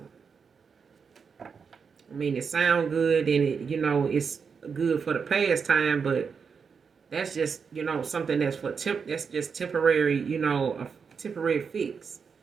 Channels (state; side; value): quieter; left; 5.9 dB